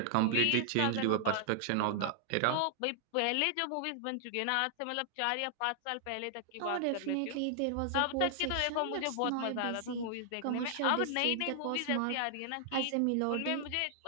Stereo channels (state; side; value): different; both; correlation 0.00